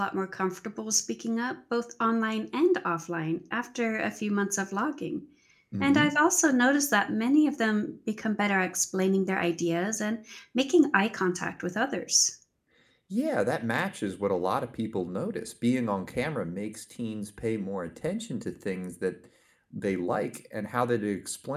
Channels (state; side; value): identical; both; correlation 1.00